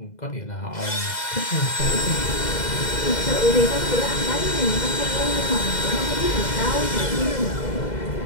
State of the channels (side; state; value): right; late; 2.0 ms